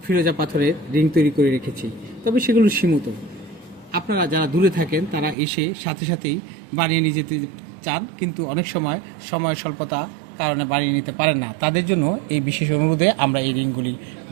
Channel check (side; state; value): left; drops out; at 5.4 s